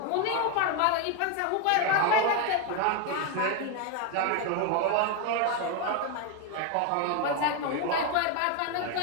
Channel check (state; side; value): different; both; correlation 0.01